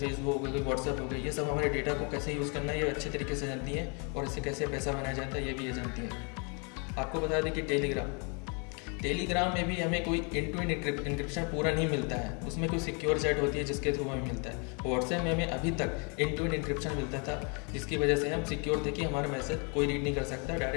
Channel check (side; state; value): right; quieter; 35.1 dB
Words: हो गई, व्हाट्सएप हो गई, ये सब हमारे डेटा को कैसे यूज़ करना है ये अच्छे तरीके से जानती हैं और इससे कैसे पैसा बनाया जाता है ये भी ये जानती हैं। आपको बता दें कि टेलीग्राम में भी हमें कोई एंड टू एंड इंक्रिप्शन पूरा नहीं मिलता है, उसमें कोई सिक्योर चैट होती है जिसके थ्रू हमें मिलता है। व्हाट्सएप में हमें अभी तक एंड टू एंड इंक्रिप्शन मिलता था जिसकी वजह से हम सिक्योर थे कि हमारा मैसेज कोई रीड नहीं कर सकता,